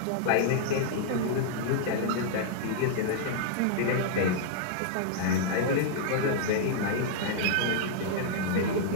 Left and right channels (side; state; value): both; different; correlation -0.01